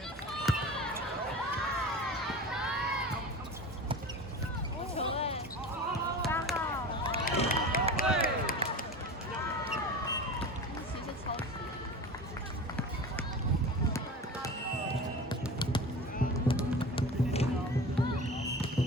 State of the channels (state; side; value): normal; both; correlation 0.34